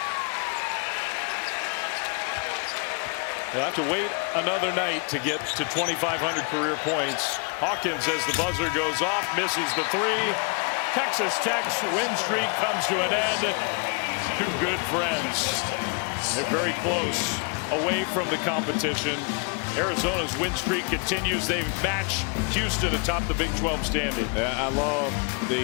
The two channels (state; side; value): quieter; right; 35.5 dB